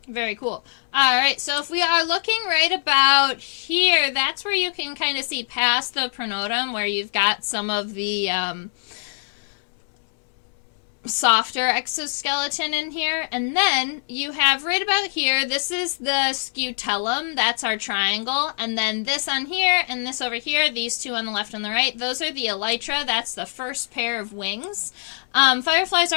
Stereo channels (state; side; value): silent; right; 63 dB below the other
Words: Very cool. All right, so if we are looking right about here, that's where you can kind of see past the pronotum, where you've got some of the softer exoskeleton in here. And then you have right about here, this is the scutellum, that's our triangle. And then this on here and this over here, these two on the left and the right, those are the elytra. That's the first pair of wings. Fireflies